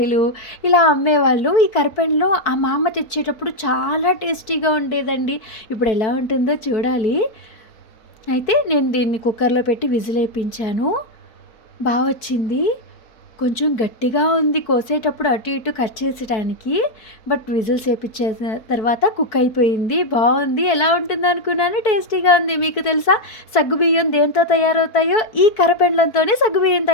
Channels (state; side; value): late; right; 4.6 ms